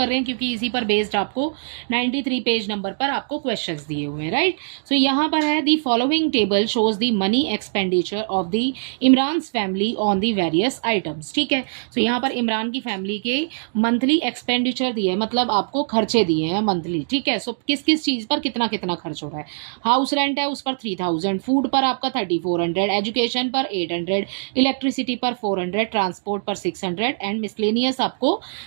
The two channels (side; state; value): left; silent; digital silence